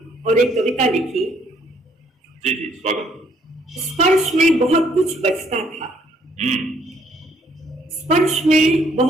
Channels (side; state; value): both; normal; correlation 0.66